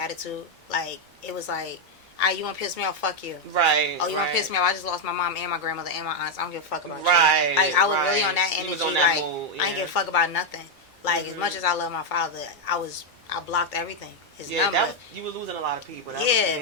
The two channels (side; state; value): both; normal; correlation 0.01